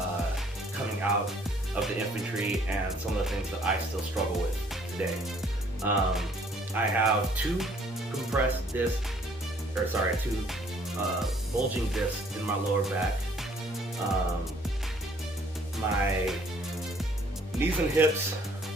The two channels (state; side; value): normal; both; correlation 0.60